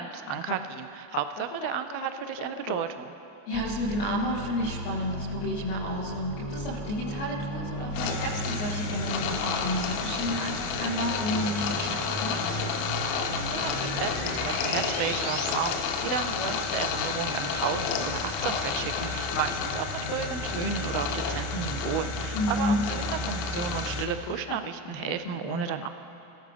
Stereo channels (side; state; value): right; late; 29 ms